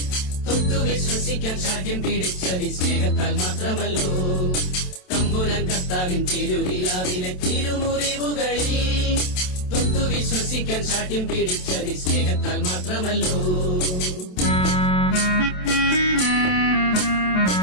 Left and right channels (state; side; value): late; right; 27 ms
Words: തൊട്ടു വിശ്വസിക്കാൻ ശാഠ്യം പിടിച്ചത് സ്നേഹത്താൽ മാത്രമല്ലോ. തമ്പുരാൻ കർത്താവിൻ തിരുവിലാവിലെ തിരുമുറിവുകളിൽ തൊട്ടു വിശ്വസിക്കാൻ ശാഠ്യം പിടിച്ചത് സ്നേഹത്താൽ മാത്രമല്ലോ.